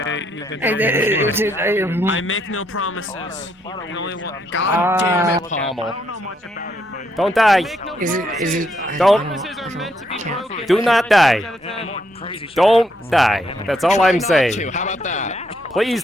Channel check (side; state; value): both; normal; correlation 0.74